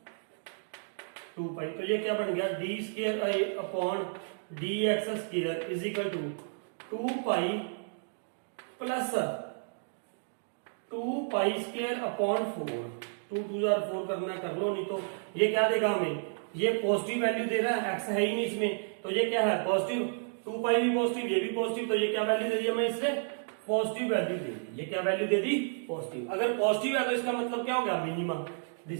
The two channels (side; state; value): left; silent; digital silence